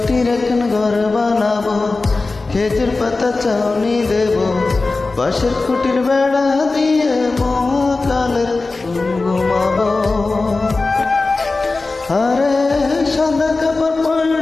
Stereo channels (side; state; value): right; quieter; 3.6 dB